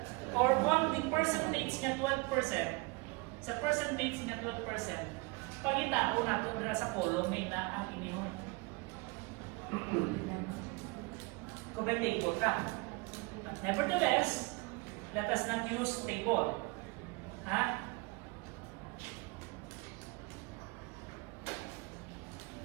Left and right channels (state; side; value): quieter; left; 26.8 dB